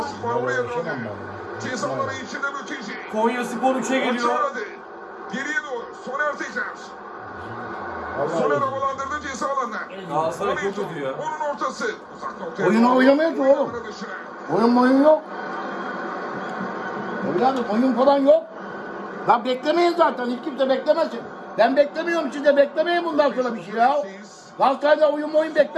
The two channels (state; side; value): identical; both; correlation 1.00